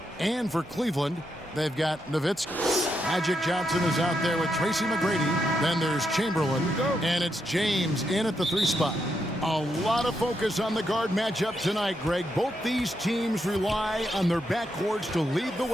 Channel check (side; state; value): both; normal; correlation 0.81